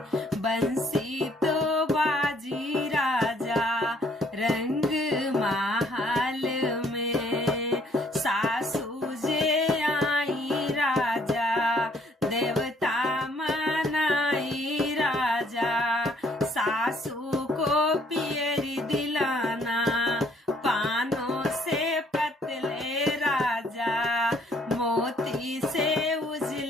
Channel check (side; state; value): both; normal; correlation 0.64